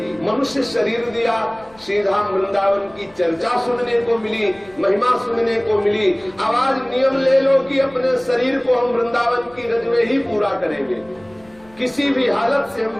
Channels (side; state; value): left; noise; rumble, 28 dB below the sound